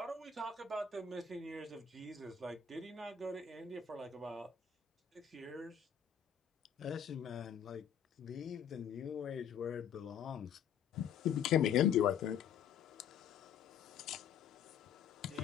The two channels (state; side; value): quieter; right; 7.8 dB